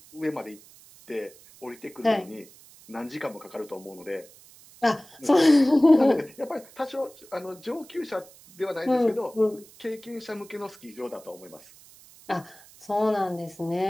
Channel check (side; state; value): right; noise; hiss, 23 dB below the sound